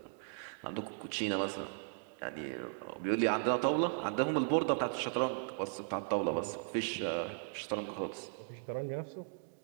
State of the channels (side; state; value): left; silent; digital silence